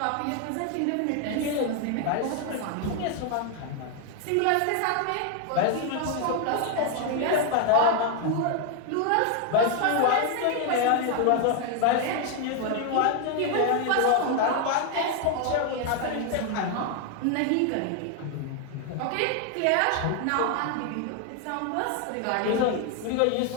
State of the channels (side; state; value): both; different; correlation 0.00